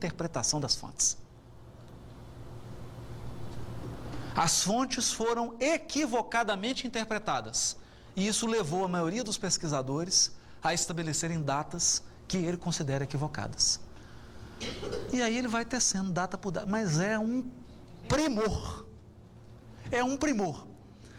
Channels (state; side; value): identical; both; correlation 1.00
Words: das fontes. As fontes foram equivocadamente interpretadas, e isso levou a maioria dos pesquisadores a estabelecerem datas que ele considera equivocadas. E aí ele vai tecendo data por data, mas é um primor. É um primor.